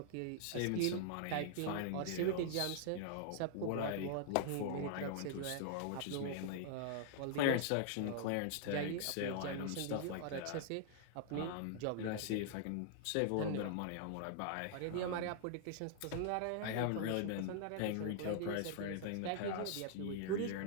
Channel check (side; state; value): both; different; correlation -0.01